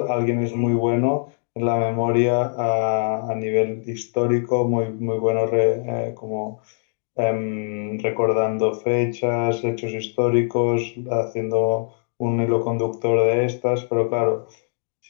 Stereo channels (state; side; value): silent; right; digital silence